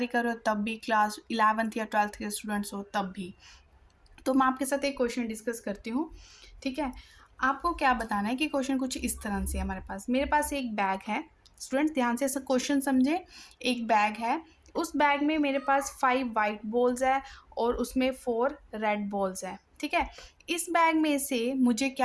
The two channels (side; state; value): both; identical; correlation 1.00